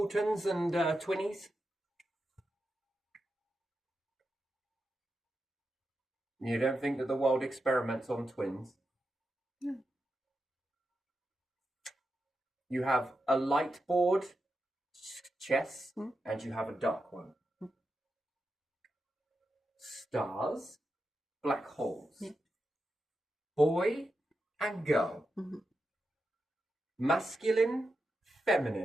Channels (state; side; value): normal; both; correlation 0.88